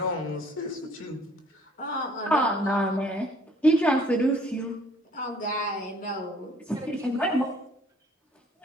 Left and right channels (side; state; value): both; normal; correlation 0.57